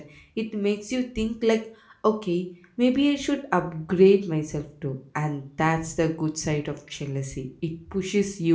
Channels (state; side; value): identical; both; correlation 1.00